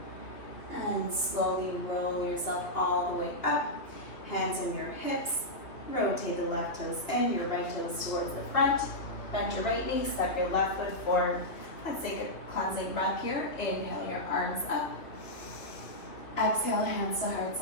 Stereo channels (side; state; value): right; late; 2.6 ms